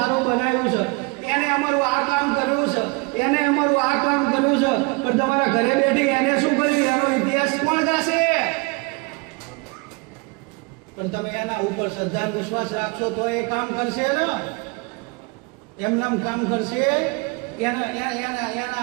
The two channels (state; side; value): quieter; left; 28.6 dB